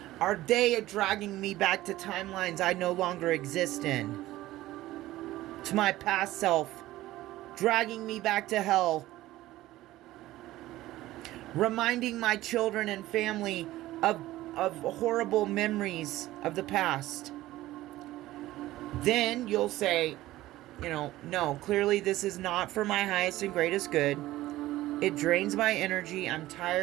Are they dragging me back to timelines I no longer exist in? To my past self, dragging me back to hell, reminding my children and family of horrible memories of the past. Then you'll say, no, clearly this is not for my highest and greatest good. It drains my energy. I'm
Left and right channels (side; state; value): left; quieter; 16.2 dB